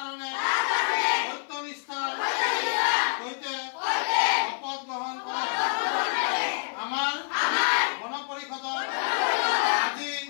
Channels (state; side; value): silent; right; 60 dB below the other